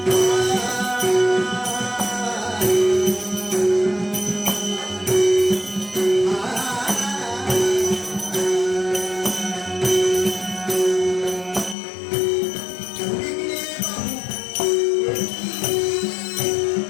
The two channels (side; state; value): right; drops out; at 11.8 s